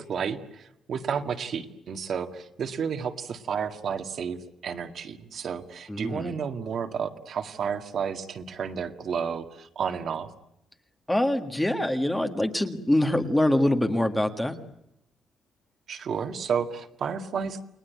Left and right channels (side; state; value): both; normal; correlation 0.88